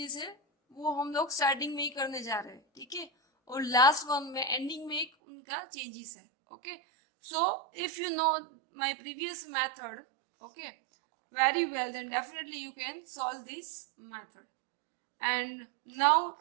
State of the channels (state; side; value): drops out; left; at 5.1 s